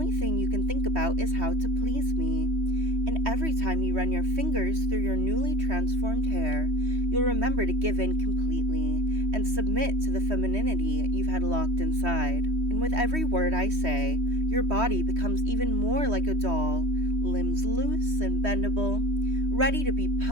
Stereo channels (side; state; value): left; late; 3.1 ms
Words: thing you can think about is how to please me. And every time you run your fingers through your newly transformed hair, you'll remember to give in completely and submit to the femininity you've had locked inside. And with every word I say, your body becomes even more like a doll, limbs loose and bendable, ready to be